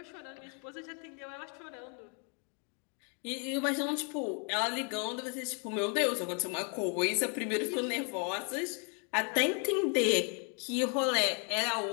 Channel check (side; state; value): right; quieter; 38.0 dB